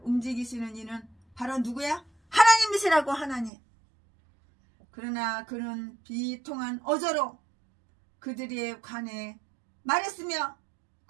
움직이시는 이는 바로 누구야? 하나님이시라고. 하나님. 그러나 그는 비통한 어조로 그들에 관해 말했으며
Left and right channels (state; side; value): drops out; left; at 3.5 s